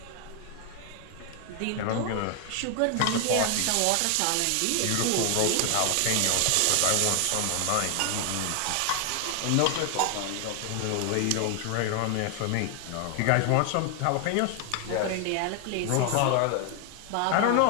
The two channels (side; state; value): both; different; correlation 0.00